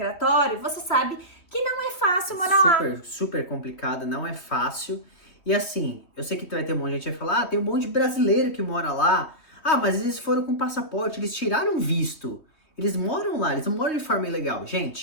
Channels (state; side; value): late; right; 3.3 ms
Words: você sabe que não é fácil morar lá. Super complicado, não é fácil. E assim, eu sei que vai ter um monte de gente que vai falar, tem um monte de brasileiro que mora lá. Mas eles foram com passaporte, eles tiraram visto. Eles moram lá, eles não moram de forma ilegal.